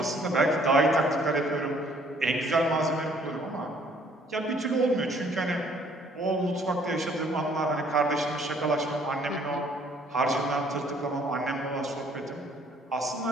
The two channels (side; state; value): both; normal; correlation 0.61